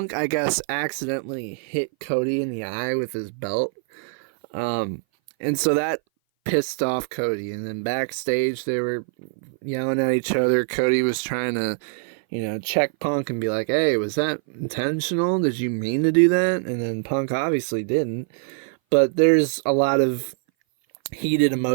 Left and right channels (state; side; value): silent; left; 59 dB below the other